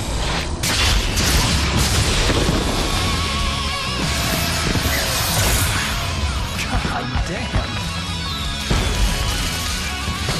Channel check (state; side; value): identical; both; correlation 1.00